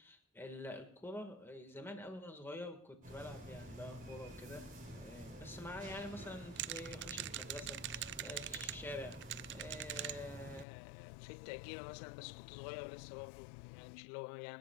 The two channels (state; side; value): drops out; right; at 10.7 s